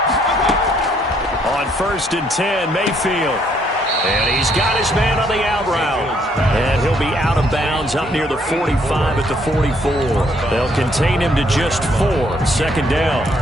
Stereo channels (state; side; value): normal; both; correlation 0.68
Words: On 1st and 10, Mayfield. And he's got his man on the out route. And he'll be out of bounds up near the 45 at the 44. They'll contain him to just 4. 2nd down.